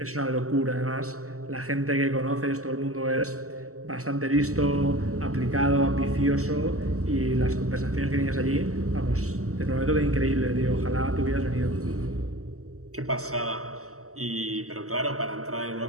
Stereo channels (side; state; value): left; late; 0.64 ms